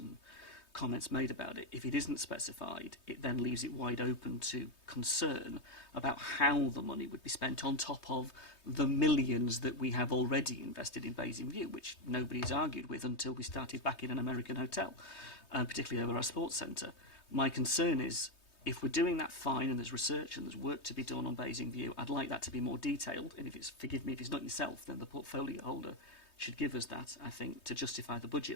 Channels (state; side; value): late; right; 3.2 ms